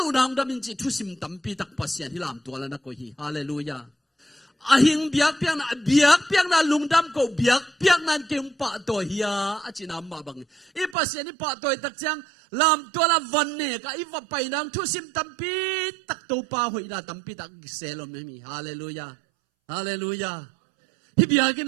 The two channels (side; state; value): left; drops out; at 11.0 s